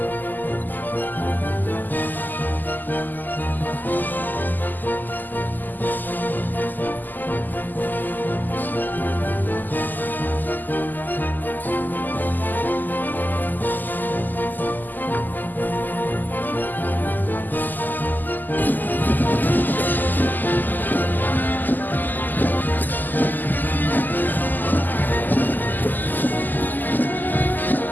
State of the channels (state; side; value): late; right; 0.086 ms